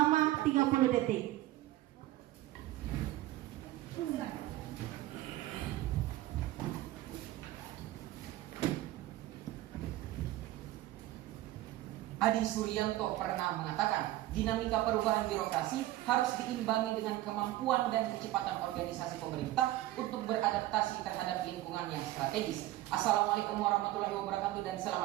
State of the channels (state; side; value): quieter; left; 15.9 dB